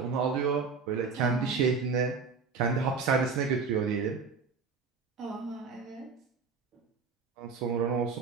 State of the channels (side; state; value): left; quieter; 5.0 dB